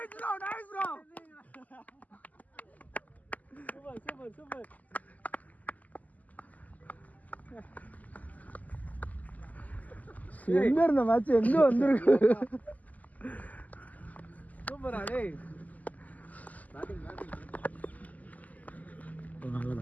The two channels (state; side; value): late; right; 0.078 ms